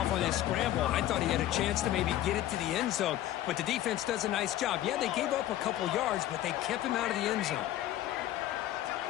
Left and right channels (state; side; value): quieter; right; 13.5 dB